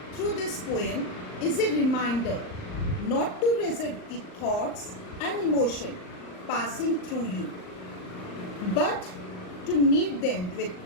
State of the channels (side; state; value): right; late; 39 ms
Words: through this poem is a reminder not to resist the thoughts and emotion passing through you, but to meet them with